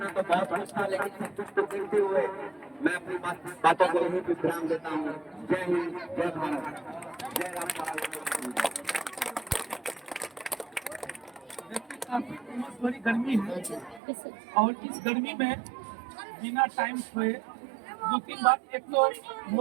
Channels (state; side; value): drops out; left; at 14.0 s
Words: तो बहुत कुछ था, लेकिन सब कुछ को देखते हुए मैं अपनी बातों को यही विश्राम देता हूँ। जय हिंद, जय भारत, जय राम। बड़ी गर्मी है और इस गर्मी में बिना टाइम सोए 2-3 बार, एक तो